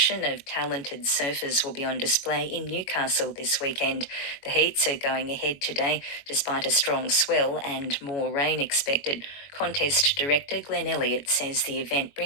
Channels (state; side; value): late; right; 21 ms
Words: of talented surfers will be on display in Newcastle this weekend. The heats are going ahead today despite a strong swell and more rain expected. Contest director Glenn Elliott says the event